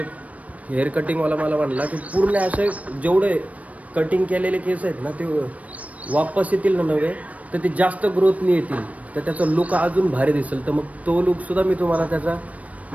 हेअर कटिंगवाला मला म्हणला की पूर्ण असे जेवढे कटिंग केलेले केस आहेत ना, ते वापस येतील ना नवे, तर ते जास्त ग्रोथनी येतील, तर त्याचा लुक अजून भारी दिसेल. तर मग तो लुकसुद्धा मी तुम्हाला त्याचा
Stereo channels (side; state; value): left; late; 0.068 ms